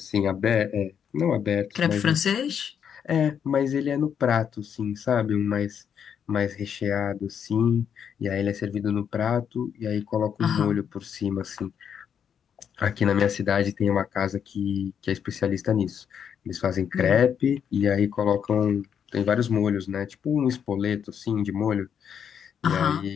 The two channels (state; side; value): quieter; right; 8.0 dB